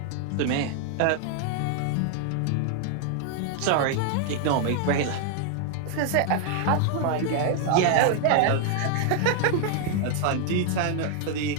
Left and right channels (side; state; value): both; different; correlation 0.00